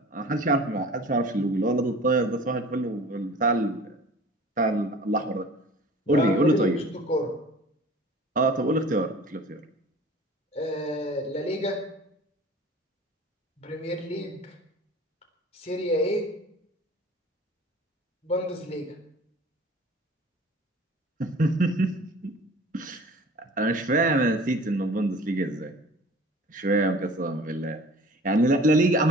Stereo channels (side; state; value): both; normal; correlation 0.44